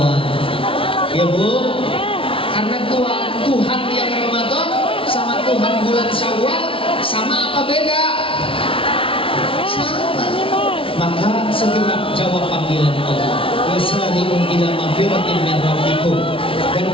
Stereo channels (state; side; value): late; right; 0.26 ms